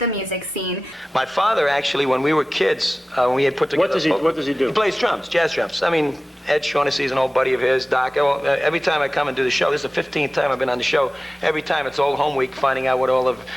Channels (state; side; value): normal; both; correlation 0.96